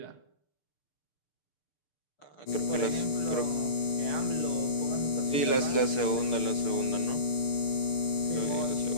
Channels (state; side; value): late; right; 6.7 ms